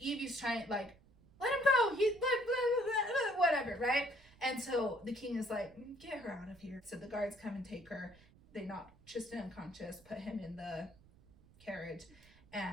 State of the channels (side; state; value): right; noise; rumble, 26 dB below the sound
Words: Evie's trying, like, let him go. He's whatever, right? And so the king is like, get her out of here. So the guards come and take her. They knock Tristan unconscious, put him in the carriage,